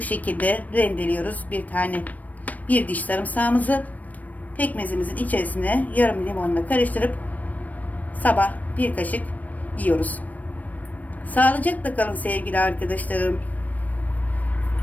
şekilde rendeliyoruz. Bir diş sarımsağımızı pekmezimizin içerisine yarım limonla karıştırıp sabah bir kaşık yiyoruz. Sağlıcakla kalın sevgili arkadaşlarım.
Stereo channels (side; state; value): right; late; 0.074 ms